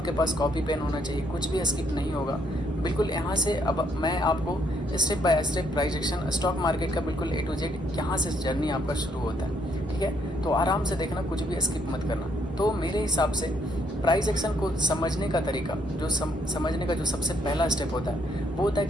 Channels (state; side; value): normal; both; correlation 0.70